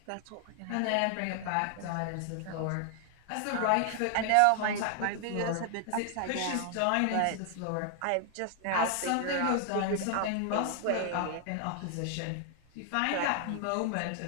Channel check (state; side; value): different; both; correlation 0.00